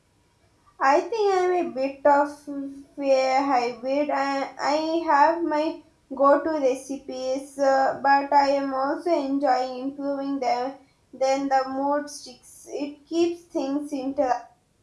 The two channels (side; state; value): both; identical; correlation 1.00